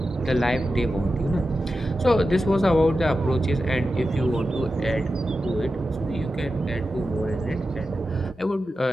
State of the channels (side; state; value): both; normal; correlation 0.91